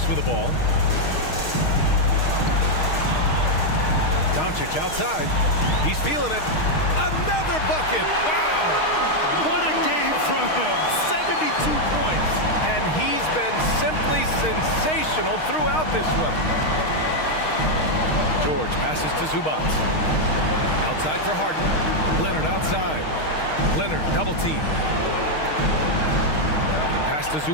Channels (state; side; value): late; right; 6.4 ms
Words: with the ball. Doncic outside. He's feeling it. Another bucket. Wow. What a game from him. 72 points. And he's been simply sensational throughout this one. George passes to Zubac. Outside for Harden. Leonard outside. Leonard double team. Pass to